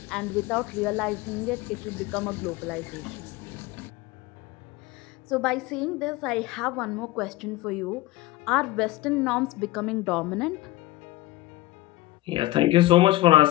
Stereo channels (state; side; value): quieter; right; 18.0 dB